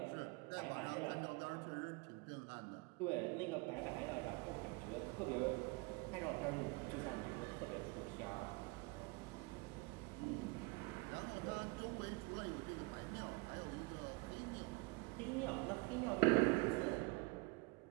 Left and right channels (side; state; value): left; quieter; 25.1 dB